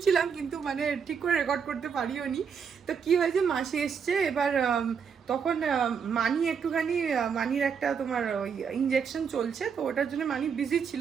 কিন্তু মানে ঠিক করে রেকর্ড করতে পারিও নি। তো কি হয়েছে, মাসি এসছে, এবার তখন মানি একটুখানি, মানির একটা তোমার ওই ইঞ্জেকশন চলছে, তো ওটার জন্য মানি বিজি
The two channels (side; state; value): left; quieter; 6.7 dB